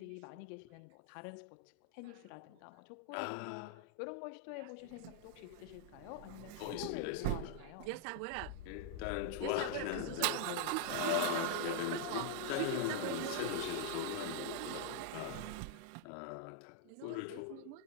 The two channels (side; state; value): both; different; correlation 0.00